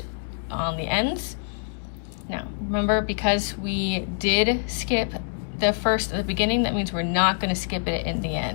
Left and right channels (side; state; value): right; silent; digital silence